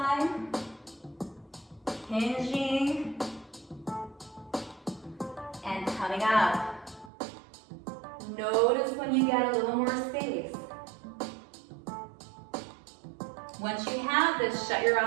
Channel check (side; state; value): left; drops out; at 7.1 s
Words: Hinging. And coming up. Notice when you get a little more space. Once you have this, shut your